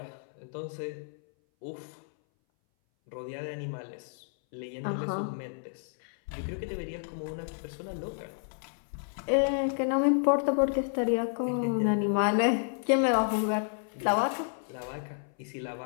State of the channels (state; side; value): silent; right; 57 dB below the other